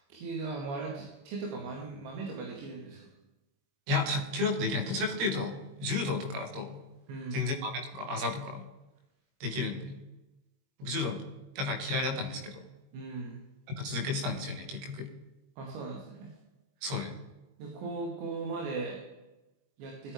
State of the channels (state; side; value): late; left; 21 ms